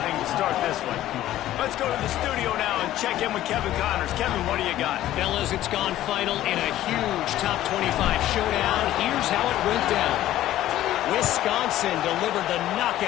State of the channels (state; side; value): quieter; right; 13.7 dB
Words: start this one. Let's go to the studio now and check in with Kevin Connors. Kevin, what do you got? Fellas, it's gone final in a huge top 25 showdown. Here's how it went down. Wisconsin delivered the